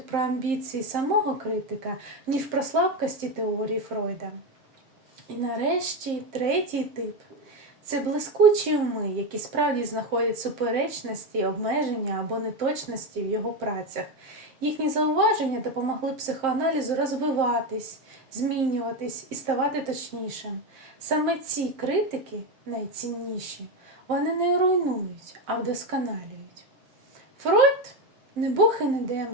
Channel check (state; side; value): late; left; 7.6 ms